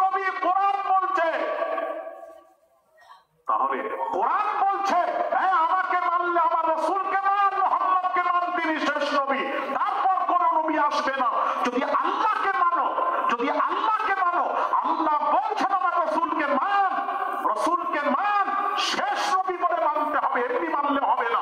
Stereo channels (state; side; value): identical; both; correlation 1.00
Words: নবী কোরআন বলছে। তাহলে কোরআন বলছে আমাকে মানলে আমার রাসূলকে মান, মুহাম্মদকে মান, তিনি শেষ নবী। তারপর কোন নবী আসবে না। যদি আল্লাহকে মানো, যদি আল্লাহকে মানো, আল্লাহ বলছেন আমার রাসূলকে মান, রাসূলকে মান, শেষ নবী বলে মানতে হবে, এমনি মানলে হবে না।